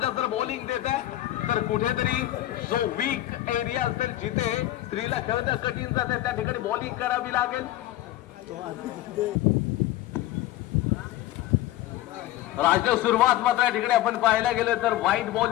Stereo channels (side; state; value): right; quieter; 14.7 dB